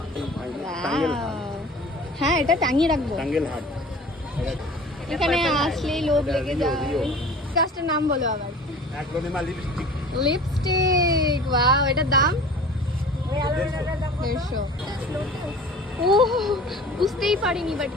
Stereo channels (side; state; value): both; normal; correlation 0.43